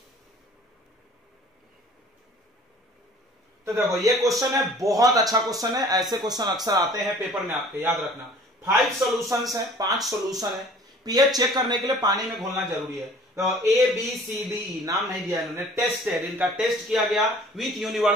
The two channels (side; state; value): both; normal; correlation 0.50